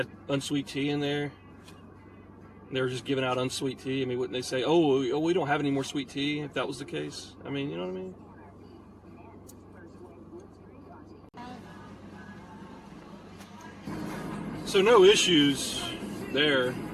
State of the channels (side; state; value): both; identical; correlation 1.00